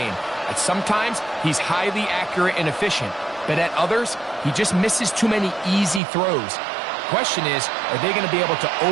At sometimes, he's highly accurate and efficient, but at others, he just misses too many easy throws. Question is, are they going to be able to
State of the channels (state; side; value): drops out; left; at 6.0 s